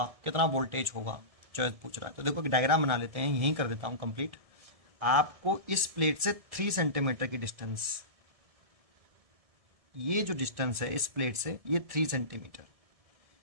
कितना वोल्टेज होगा, चॉइस पूछ रहा है। तो देखो डायग्राम बना लेते हैं, यहीं कर देता हूं कंप्लीट। आपको इस प्लेट से 3 सेंटीमीटर की डिस्टेंस, ये जो डिस्टेंस है इस प्लेट से ये 3 सेंटीमीटर,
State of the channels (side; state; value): left; late; 1.7 ms